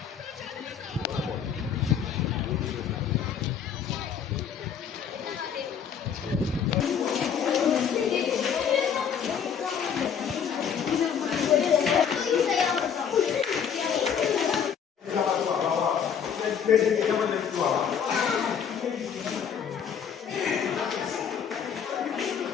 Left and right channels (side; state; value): right; quieter; 7.6 dB